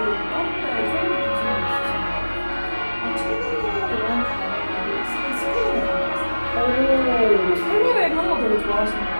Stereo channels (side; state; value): both; inverted; correlation -1.00